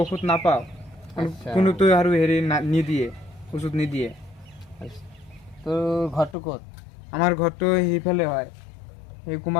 ঔষধ নাপাওঁ কোনোতো আৰু হেৰি নিদিয়ে ওষুধ নিদিয়ে তোৰ ঘৰটো ক'ত আমাৰ ঘৰটো সেইফালে হয় এই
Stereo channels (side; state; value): right; drops out; at 6.4 s